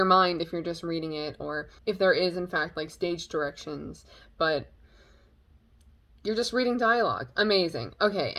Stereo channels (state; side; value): identical; both; correlation 1.00